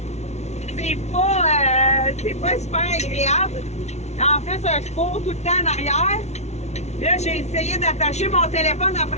C'est pas super agréable. En fait, je cours tout le temps en arrière. Là, j'ai essayé d'attacher mon téléphone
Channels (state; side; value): late; right; 0.32 ms